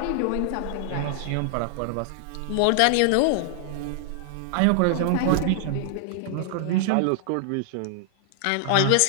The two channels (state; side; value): different; both; correlation 0.00